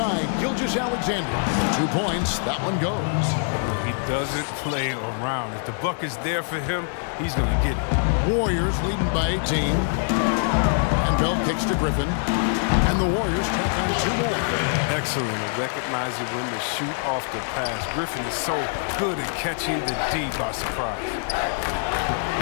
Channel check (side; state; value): right; silent; 62 dB below the other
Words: Gilgeous-Alexander. 2 points. That one goes. He doesn't play around. If the buck is there for him, he's going to get it. Warriors leading by 18. And Bell kicks to Griffin. And the Warriors tack on 2 more. Excellent at recognizing when to shoot off the pass. Griffin is so good at catching the D by surprise.